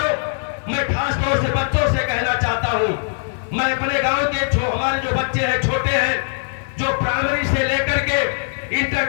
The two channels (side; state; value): right; silent; digital silence